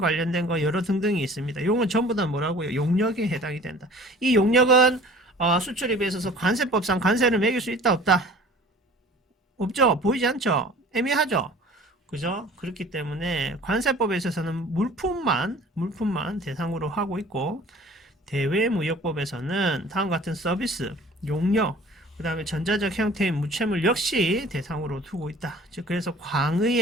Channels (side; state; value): both; normal; correlation 0.47